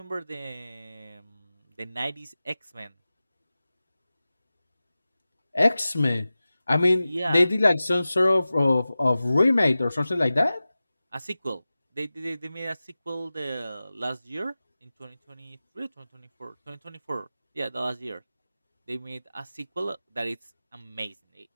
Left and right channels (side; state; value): both; inverted; correlation -0.96